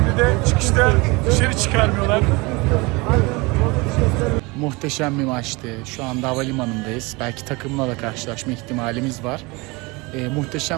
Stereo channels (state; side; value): quieter; left; 25.4 dB